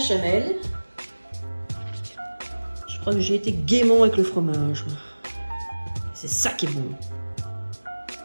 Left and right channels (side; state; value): both; inverted; correlation -1.00